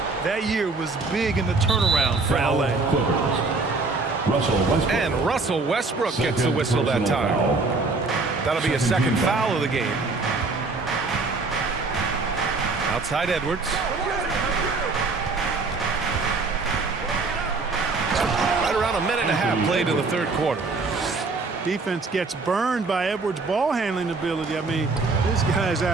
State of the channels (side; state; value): left; quieter; 3.8 dB